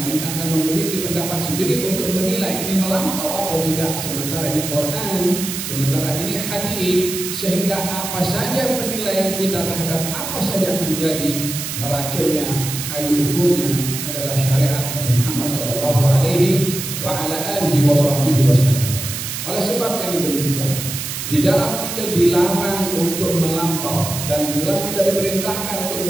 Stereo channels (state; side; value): noise; right; hiss, 5 dB below the sound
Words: memiliki pendapat sendiri untuk menilai ini melampau atau tidak. Sementara ini Quran, sementara ini hadis, sehingga apa saja penilaian kita terhadap apa saja terjadi, neraconya, kayu ukurnya adalah syariat Nabi Muhammad sallallahu alaihi wa ala alihi wasallam. Oleh sebab yang demikian, di dalam kita dilarang untuk melampau dan di dalam kita diperintahkan